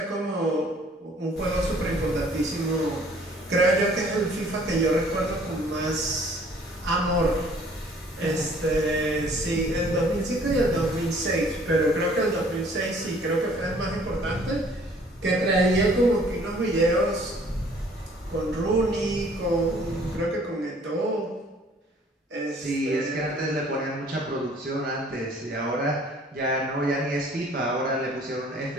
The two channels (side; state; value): both; normal; correlation 0.56